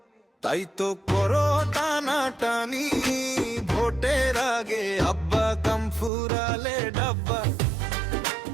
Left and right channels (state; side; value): drops out; left; at 6.1 s